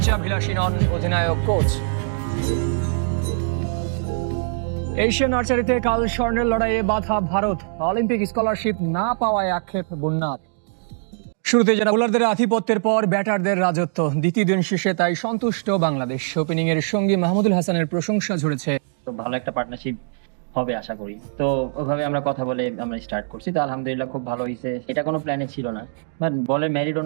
নন অধিনায়ক কোচ। এশিয়ান আর্চারিতে কাল স্বর্ণের লড়াইয়ে বাধা ভারত। অলিম্পিক স্কলারশিপ না পাওয়ায় আক্ষেপ বন্যার। শুরুতে যারা বোলারদের আধিপত্যের পর ব্যাটারদের রাজত্ব, দ্বিতীয় দিন শেষে তাই সন্তুষ্ট বাংলাদেশ। ওপেনিং এর সঙ্গে মাহমুদুল হাসানের প্রশংসা ঝরেছে। তো ভালো একটা পার্টনারশিপ হবে আশা করি। তো ওইভাবে আমরা কথা বলে আমরা স্টার্ট করছি। তো আলহামদুলিল্লাহ খুব ভালো হয়েছে। এটা কোনো প্ল্যানে ছিল না, বাট বলের মেরিট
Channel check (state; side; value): silent; left; digital silence